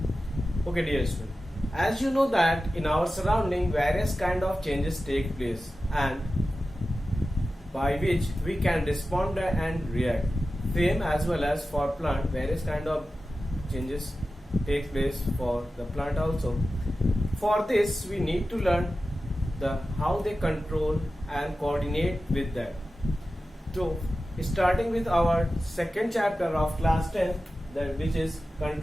Okay dear student, as you know that in our surrounding various kind of changes take place and by which we can respond and react. Same as well as for plant, various kind of changes take place for the plant also. For this we need to learn how they control and coordinate with that. So starting with our second chapter of class 10, that which is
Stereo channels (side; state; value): both; normal; correlation 0.94